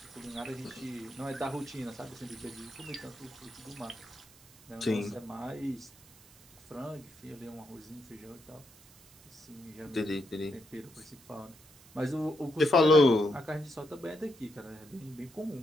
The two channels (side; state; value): right; noise; hiss, 24 dB below the sound